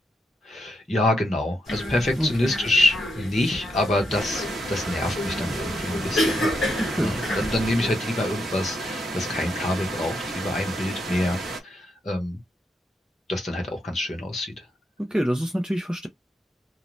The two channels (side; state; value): both; normal; correlation 0.81